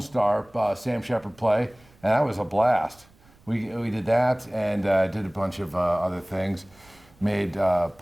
Sam Shepard play, and that was a blast. We did that and did a bunch of other things. Made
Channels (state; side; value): noise; right; rumble, 29 dB below the sound